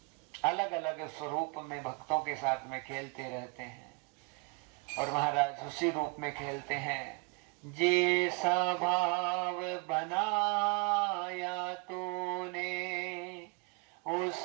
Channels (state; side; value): quieter; left; 31.0 dB